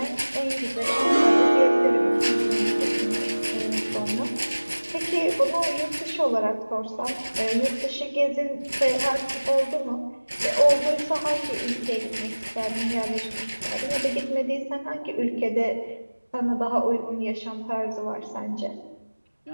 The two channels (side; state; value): both; inverted; correlation -1.00